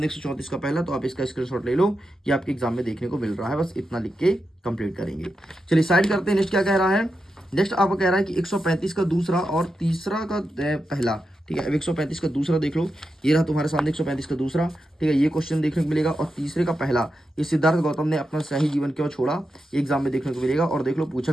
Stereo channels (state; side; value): normal; both; correlation 0.88